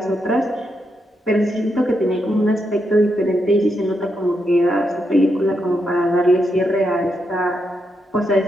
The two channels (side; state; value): both; normal; correlation 0.82